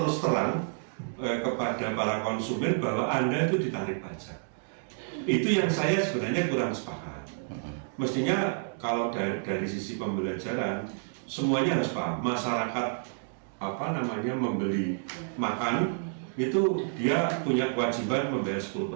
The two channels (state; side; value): silent; left; digital silence